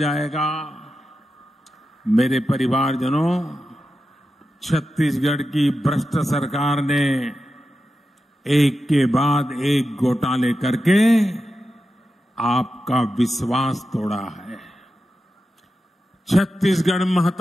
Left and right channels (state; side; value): normal; both; correlation 0.90